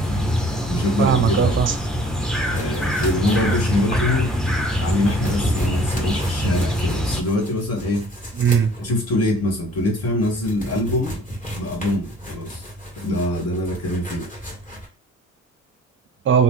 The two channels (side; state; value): both; normal; correlation 0.51